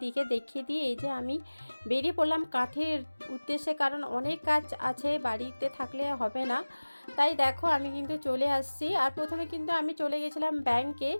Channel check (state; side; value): inverted; both; correlation -1.00